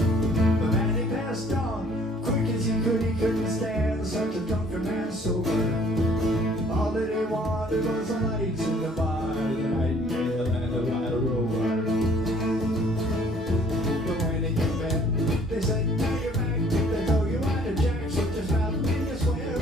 But Maddy passed on quick as he couldn't stand such a drunken man sober. All that he wanted was the lights in the bar, the nightingale and the white rover. But when he came back, they said, "Now you're back." They told you why the jack, so just about me to swear,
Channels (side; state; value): both; normal; correlation 0.58